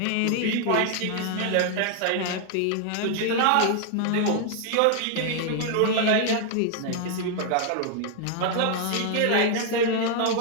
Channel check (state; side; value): different; both; correlation 0.00